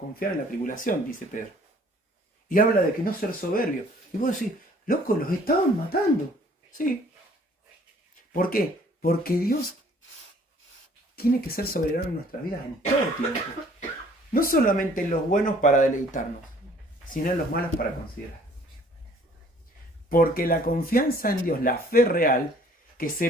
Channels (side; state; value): both; normal; correlation 0.56